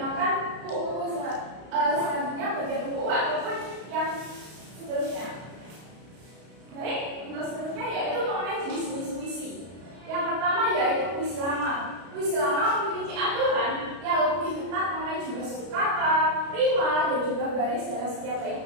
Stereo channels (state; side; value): late; left; 32 ms